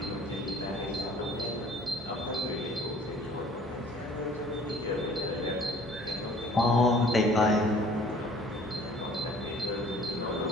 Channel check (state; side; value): normal; both; correlation 0.52